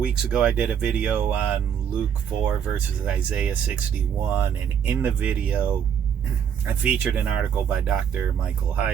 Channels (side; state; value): left; quieter; 8.2 dB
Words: ago, I did a video on Luke 4 versus Isaiah 61, and in the video, I featured an article by Dr. Michael